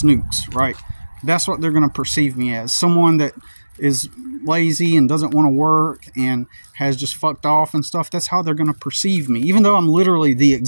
right? That's what they're going to perceive me as. Someone that is lazy and doesn't want to work and has just fucked off and stuff. That's how they're going to perceive me, even though I'm literally the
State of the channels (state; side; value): inverted; both; correlation -1.00